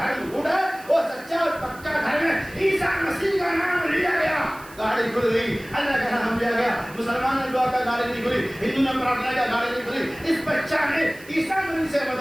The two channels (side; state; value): right; noise; hiss, 21 dB below the sound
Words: گڈ ہے، وہ سچا اور پکا دھرم ہے، عیسیٰ مسیح کا نام لیا گیا، گاڑی کھل گئی، اللہ کا نام لیا گیا، مسلمان نے دعا کا گاڑی نہیں کھلی، ہندو نے پرارتھنا کا گاڑی نہیں کھلی، اس بچہ نے عیسیٰ مسیح سے